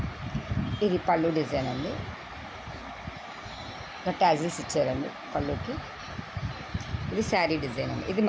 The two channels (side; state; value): both; identical; correlation 1.00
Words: ఇది పళ్ళు డిజైన్ అండి. ట్యాజిల్స్ ఇచ్చారండి పళ్ళుకి. ఇది శారీ డిజైన్ అండి. ఇది